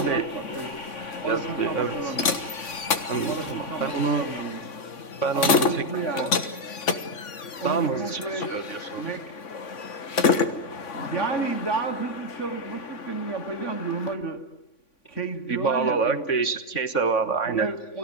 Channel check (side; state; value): right; late; 3.5 ms